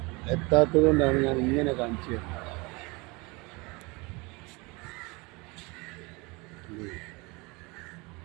എത്താത്തത് കൊണ്ടാണ് ഞാൻ ഇങ്ങനെ കാണിച്ചു തരുന്നത്.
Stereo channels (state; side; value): quieter; left; 26.3 dB